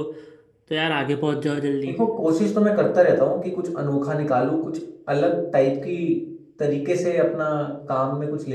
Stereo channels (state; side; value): identical; both; correlation 1.00